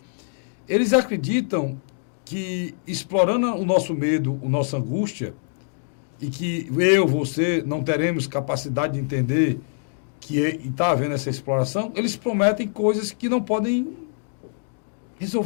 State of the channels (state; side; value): silent; right; digital silence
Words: eles acreditam que, explorando o nosso medo, a nossa angústia, e que eu, você, não teremos capacidade de entender que está havendo essa exploração, eles prometem coisas que não podem